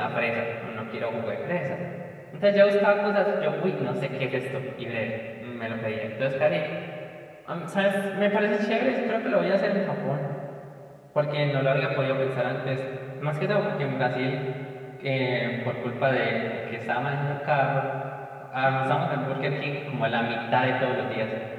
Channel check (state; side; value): identical; both; correlation 1.00